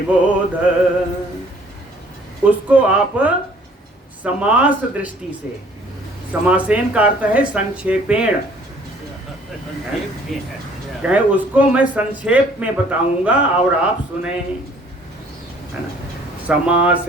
उसको आप समास दृष्टि से, समासेन का अर्थ है संक्षेपेण, कहे उसको मैं संक्षेप में बताऊंगा और आप सुने, है ना।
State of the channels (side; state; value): both; normal; correlation 0.57